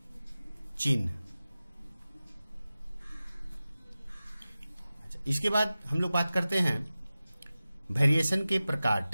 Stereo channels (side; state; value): both; inverted; correlation -0.96